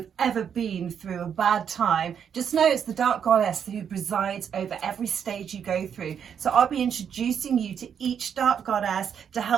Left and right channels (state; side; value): quieter; left; 7.9 dB